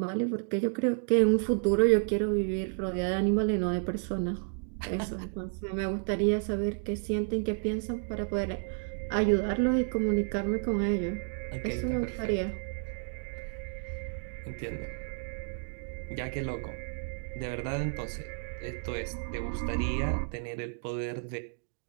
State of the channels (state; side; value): silent; left; digital silence